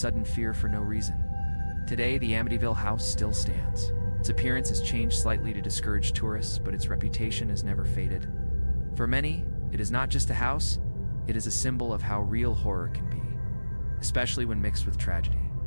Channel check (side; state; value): both; inverted; correlation -1.00